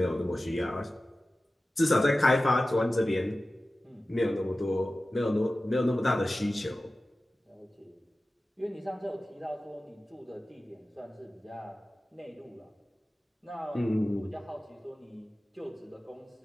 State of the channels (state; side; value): normal; both; correlation 0.95